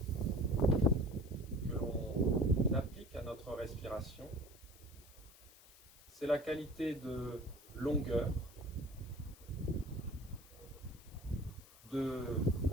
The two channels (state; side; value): noise; left; hiss, 23 dB below the sound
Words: que l'on applique à notre respiration. C'est la qualité de longueur, de